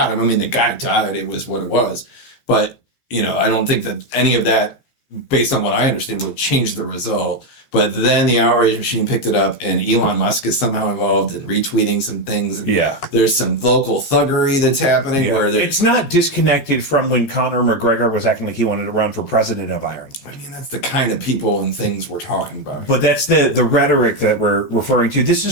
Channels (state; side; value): late; right; 15 ms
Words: him. I mean, the guy died. It was what it was, but I don't think that any of that, based on what I understand, would change the result. But then the outrage machine picked it up, and Elon Musk is somehow involved in retweeting some things. And there's some local thuggery that's happening where it's not disconnected from when Conor McGregor was acting like he wanted to run for president of Ireland. I mean, that's the kind of people and things we're talking about. But that's the rhetoric that we're referring to. This